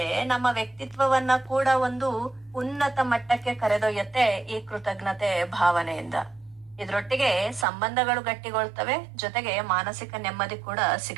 ನಮ್ಮ ವ್ಯಕ್ತಿತ್ವವನ್ನ ಕೂಡ ಒಂದು ಉನ್ನತ ಮಟ್ಟಕ್ಕೆ ಕರೆದೊಯ್ಯತ್ತೆ ಈ ಕೃತಜ್ಞತೆ ಭಾವನೆಯಿಂದ. ಇದ್ರೊಟ್ಟಿಗೆ ಸಂಬಂಧಗಳು ಗಟ್ಟಿಗೊಳ್ತವೆ, ಜೊತೆಗೆ ಮಾನಸಿಕ ನೆಮ್ಮದಿ ಕೂಡ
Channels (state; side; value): drops out; left; at 7.7 s